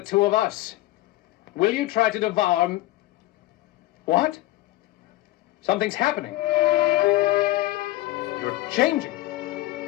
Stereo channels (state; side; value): quieter; right; 17.2 dB